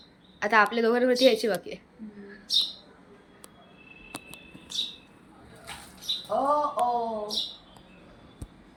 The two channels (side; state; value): both; identical; correlation 1.00